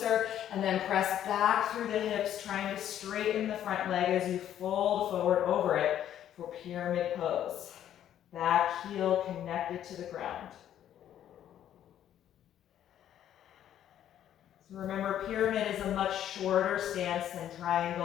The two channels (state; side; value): quieter; right; 10.9 dB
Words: and then press back through the hips, trying to straighten the front leg as you fold forward over it for pyramid pose. Back heel connected to the ground. So remember, pyramid is a much shorter stance than